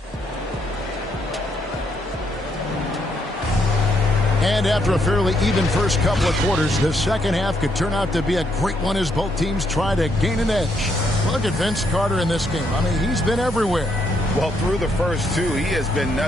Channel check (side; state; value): both; normal; correlation 0.74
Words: And after a fairly even first couple of quarters, the second half could turn out to be a great one as both teams try to gain an edge. Look at Vince Carter in this game. I mean, he's been everywhere. Well, through the first 2, he has been